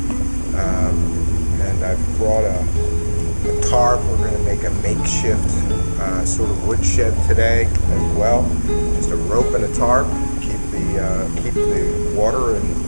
And I've brought a tarp. We're going to make a makeshift sort of woodshed today as well. Just a rope and a tarp, keep the water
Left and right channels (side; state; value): both; inverted; correlation -1.00